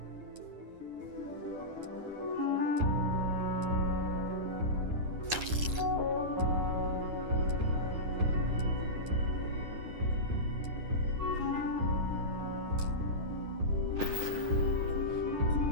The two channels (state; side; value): late; left; 9.8 ms